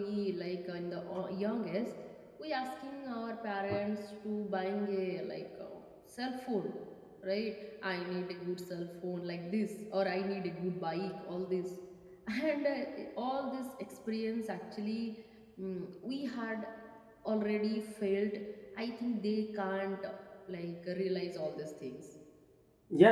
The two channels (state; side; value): identical; both; correlation 1.00